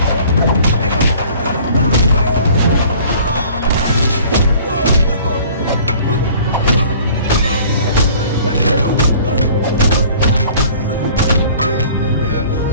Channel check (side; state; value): both; inverted; correlation -0.50